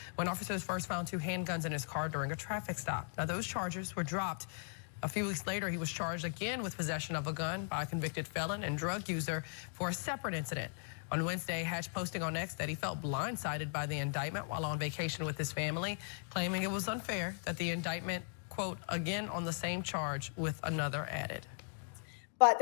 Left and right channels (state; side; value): silent; right; 52 dB below the other